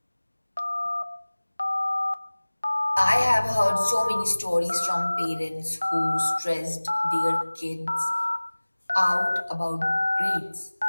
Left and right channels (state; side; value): inverted; both; correlation -1.00